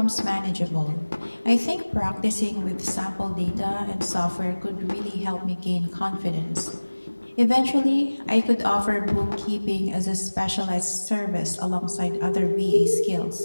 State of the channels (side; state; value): both; inverted; correlation -1.00